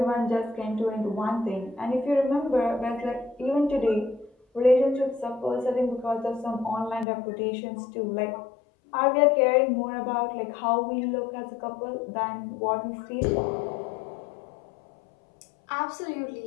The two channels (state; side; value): drops out; right; at 7.1 s